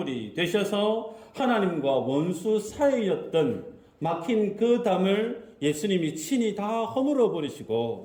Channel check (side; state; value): both; identical; correlation 1.00